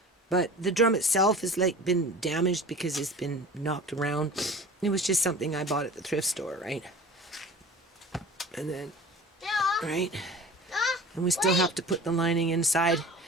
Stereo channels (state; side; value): normal; both; correlation 0.40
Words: but the drum itself has like been damaged because it's been knocked around. It was just something I bought at the thrift store, right? And then, right? And we still have to put the lining inside